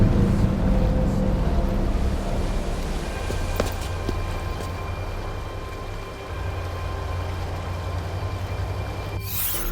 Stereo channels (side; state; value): both; identical; correlation 1.00